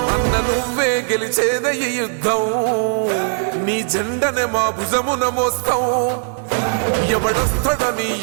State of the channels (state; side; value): silent; left; digital silence